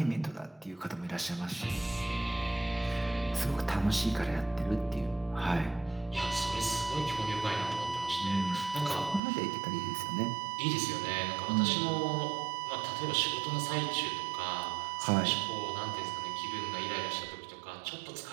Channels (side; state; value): left; drops out; at 9.2 s